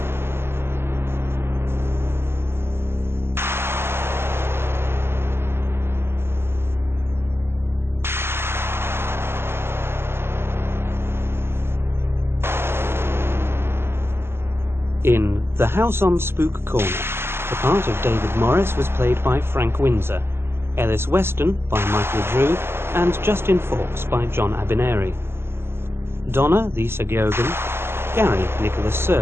In The House on Spook Corner, the part of David Morris was played by Frank Windsor, Ellis Weston by Michael Drew, and Justin Fawkes by John Abineri. Donna, Lisa Giogan, Gary, Nicholas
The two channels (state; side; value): late; left; 0.12 ms